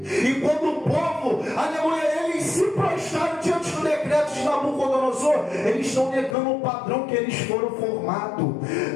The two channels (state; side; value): drops out; right; at 6.4 s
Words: E quando o povo, aleluia, eles se prostraram diante do decreto de Nabucodonosor, eles estão negando o padrão que eles foram formados.